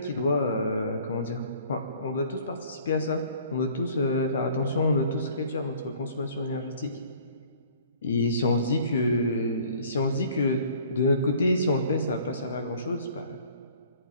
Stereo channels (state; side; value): inverted; both; correlation -0.53